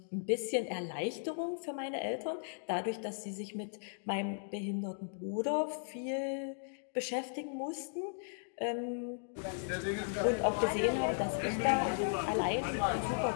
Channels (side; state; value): right; silent; digital silence